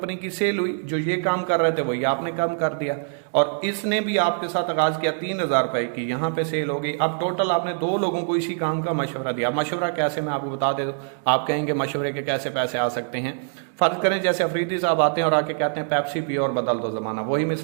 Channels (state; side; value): silent; left; 63 dB below the other